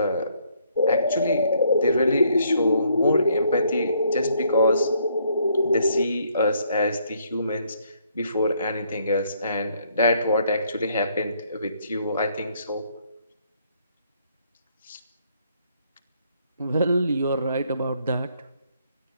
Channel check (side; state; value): both; inverted; correlation -0.69